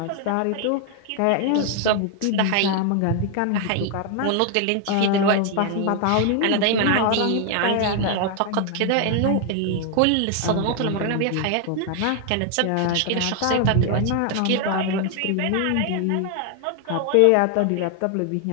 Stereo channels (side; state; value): both; different; correlation 0.00